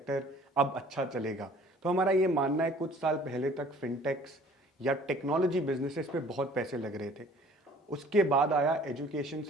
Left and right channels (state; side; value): normal; both; correlation 0.52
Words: अब अच्छा चलेगा। तो हमारा ये मानना है कुछ साल पहले तक फिनटेक्स या टेक्नोलॉजी बिजनेसेस पे बहुत पैसे लग रहे थे। उसके बाद आया एजुकेशन